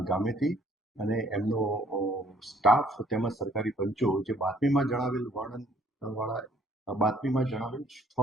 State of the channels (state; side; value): normal; both; correlation 0.61